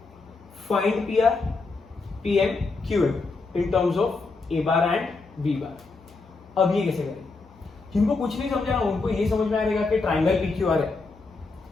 Find PR, PM, QM in terms of A bar and B bar. अब ये कैसे करें? जिनको कुछ नहीं समझा उनको ये समझ में आएगा कि ट्राइंगल PQR है,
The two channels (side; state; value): right; quieter; 3.9 dB